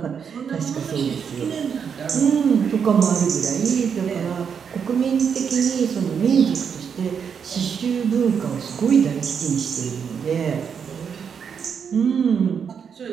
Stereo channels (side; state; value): left; quieter; 7.0 dB